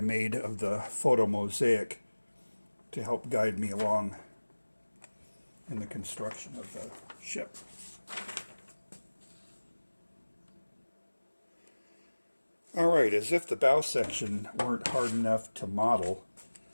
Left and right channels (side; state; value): both; inverted; correlation -1.00